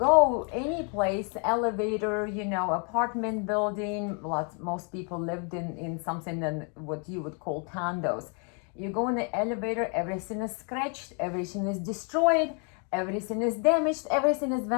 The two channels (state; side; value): quieter; right; 37.9 dB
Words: any place, elevator, apartment building, most people lived in something that what you would call condos. You go in the elevator, everything is scratched, everything is destroyed, everything is damaged, everything is